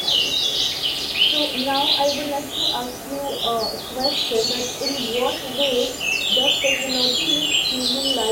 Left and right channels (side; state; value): both; identical; correlation 1.00